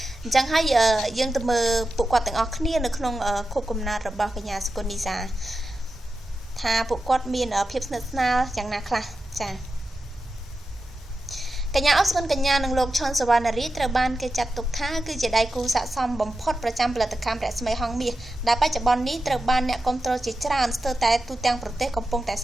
អញ្ចឹងហើយយើងទៅមើលពួកគាត់ទាំងអស់គ្នានៅក្នុងខូបកំណត់របស់កញ្ញាសុគន្ធនីសាថាពួកគាត់មានភាពស្និទ្ធស្នាលយ៉ាងណាខ្លះចាកញ្ញាអបសុគន្ធកញ្ញានិងលោកឈុនសវណ្ណរាជត្រូវបានគេចាត់ទុកថាគឺជាដៃគូស័ក្តិសមបំផុតប្រចាំផលិតកម្មរស្មីហងមាសដែលបច្ចុប្បន្ននេះត្រូវបានអ្នកគាំទ្រជាច្រើនស្ទើរតែទូទាំងប្រទេសកំពុងតែ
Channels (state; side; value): normal; both; correlation 0.91